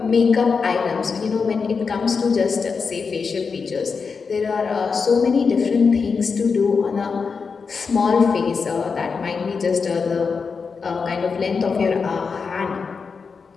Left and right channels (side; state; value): right; quieter; 5.2 dB